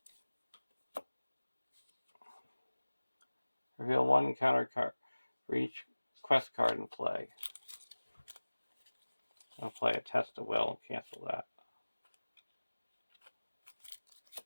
Reveal 1 encounter card for each quest card in play. I'll play a Test of Will and cancel that.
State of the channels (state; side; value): inverted; both; correlation -1.00